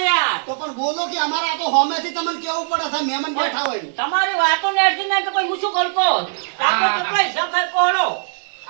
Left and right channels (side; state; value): left; silent; digital silence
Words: યાર તો પણ બોલો કે અમારા આ તો હોમેથી તમને કેવું પડે છે મહેમાન બેઠા હોય તમારી વાતો ને અડધી ના તો કોઈ હું શું કરતો આપણે કેટલા હિસાબ થાય કોહડો